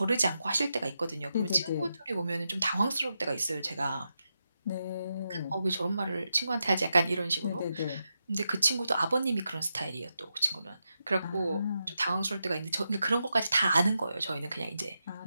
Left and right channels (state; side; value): inverted; both; correlation -0.87